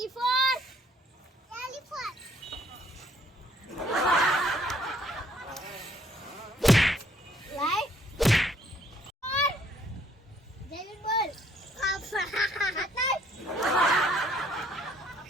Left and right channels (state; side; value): normal; both; correlation 0.64